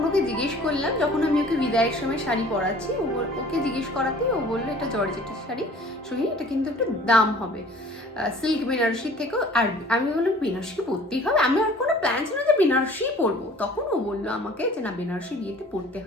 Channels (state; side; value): normal; both; correlation 0.49